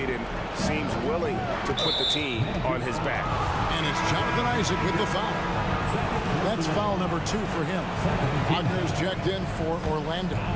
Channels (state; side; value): identical; both; correlation 1.00